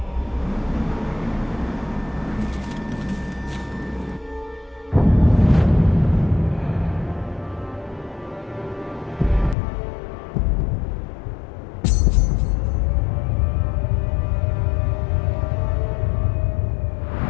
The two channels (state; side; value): drops out; right; at 9.6 s